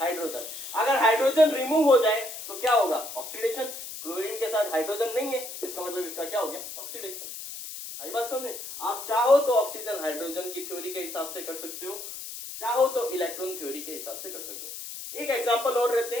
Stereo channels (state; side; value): noise; left; hiss, 9 dB below the sound